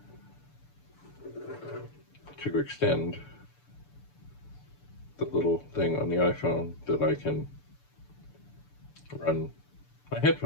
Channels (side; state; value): right; late; 6.9 ms